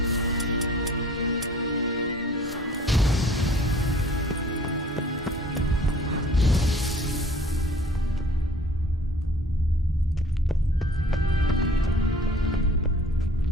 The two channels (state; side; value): normal; both; correlation 0.51